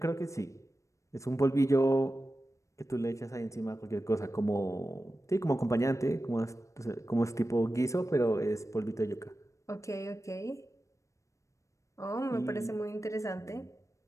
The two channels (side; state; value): right; late; 0.15 ms